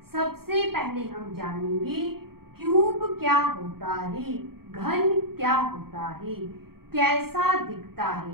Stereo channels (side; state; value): left; late; 0.94 ms